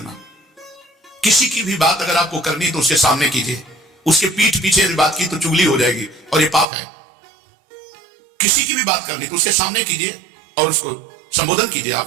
किसी की भी बात अगर आपको करनी तो उसके सामने कीजिए, उसके पीठ पीछे बात की तो चुगली हो जाएगी और ये पाप है। किसी की भी बात करनी तो उसके सामने कीजिए और उसको संबोधन कीजिए,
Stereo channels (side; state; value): left; drops out; at 6.7 s